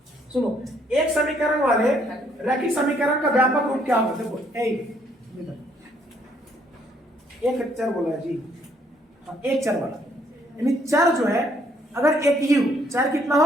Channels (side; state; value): both; normal; correlation 0.67